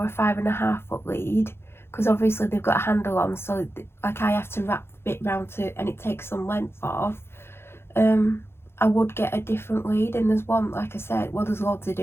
a 5.5 foot lead, because obviously they've got a handle on, so like I have to wrap bit round to, and it takes some length off, I would get a different lead. And there's one, like I said, well, there's loads to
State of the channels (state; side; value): late; right; 0.12 ms